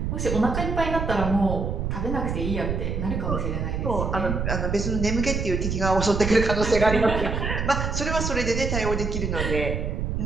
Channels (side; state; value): right; noise; rumble, 2 dB below the sound